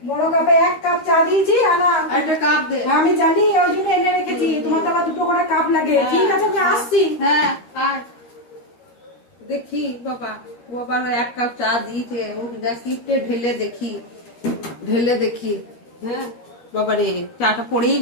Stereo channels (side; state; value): right; late; 13 ms